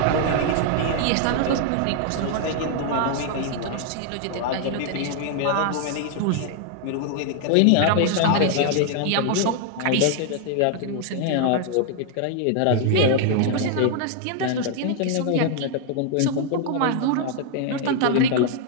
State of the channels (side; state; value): both; different; correlation 0.00